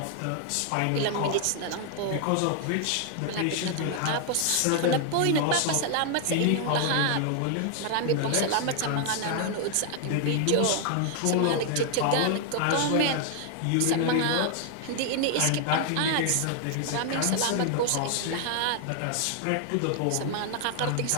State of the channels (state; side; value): different; both; correlation 0.00